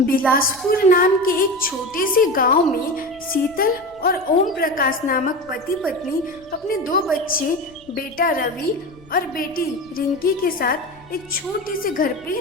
बिलासपुर नाम के एक छोटे से गांव में शीतल और ओम प्रकाश नामक पति पत्नी अपने 2 बच्चे बेटा रवि और बेटी रिंकी के साथ एक छोटे से घर पे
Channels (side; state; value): left; noise; rumble, 27 dB below the sound